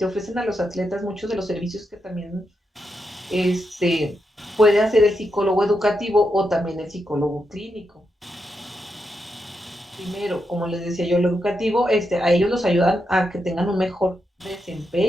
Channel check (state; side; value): normal; both; correlation 0.84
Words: ofrecen a los atletas muchos de los servicios que también puede hacer el psicólogo educativo o también el psicólogo clínico. Primero, como les decía yo, lo educativo, a ellos los ayudan a que tengan un mejor